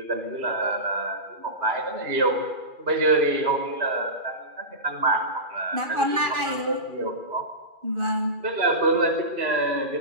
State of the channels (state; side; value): late; left; 2.4 ms